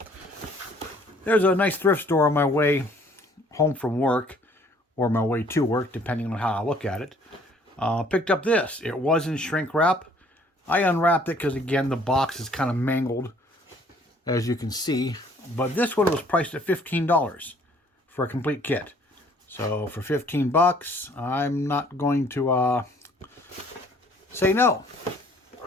there's a nice thrift store on my way home from work or my way to work, depending on how I look at it. Picked up this. It was in shrink wrap. I unwrapped it because, again, the box is kind of mangled, as you can see. But this one was priced at $15 for a complete kit. So for 15 bucks, I'm not going to say no.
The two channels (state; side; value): normal; both; correlation 0.59